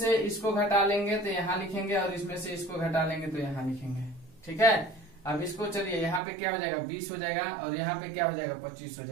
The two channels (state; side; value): drops out; left; at 6.2 s